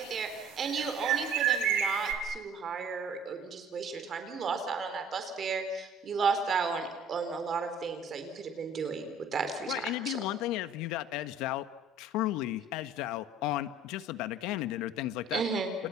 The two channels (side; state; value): both; normal; correlation 0.50